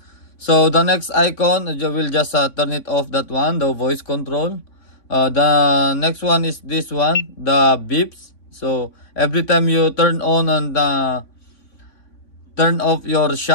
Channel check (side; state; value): right; late; 3.5 ms